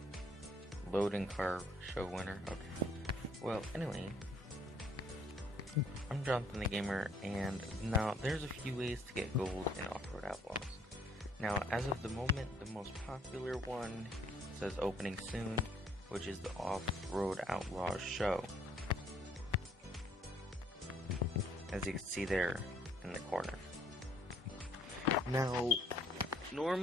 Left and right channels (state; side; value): normal; both; correlation 0.63